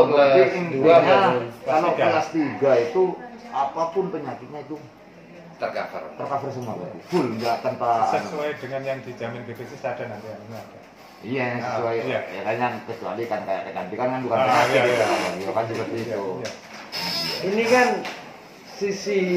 berarti kelas 2 intinya kalau Kelas tiga. kelas 3 itu apapun penyakitnya itu Tercover. tercover semua berarti. Full enggak tanpa Sesuai dengan yang dijamin BPJS ada nanti yang ini ada. Iya, yang sesuai Iya. ya kan yang kecuali kan kayak kecantikan kan bukan Ah, penyakit iya, gitu iya. kan. Ya kan seperti Iya, itu. iya. Ini kan sisi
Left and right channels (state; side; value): identical; both; correlation 1.00